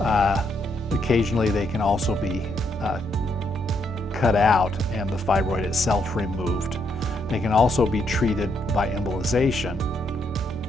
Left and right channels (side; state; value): both; normal; correlation 0.76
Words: Occasionally, they can also be cut out and the fibroid itself removed. They can also be treated by embolization.